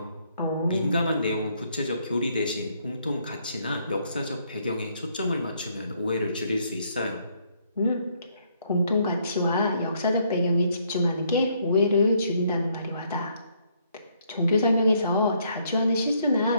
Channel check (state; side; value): inverted; both; correlation -0.70